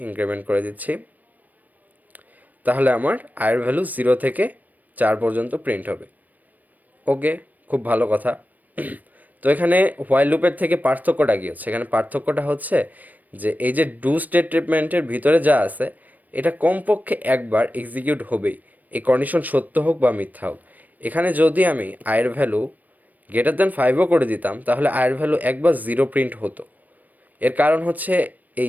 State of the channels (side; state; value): left; late; 0.082 ms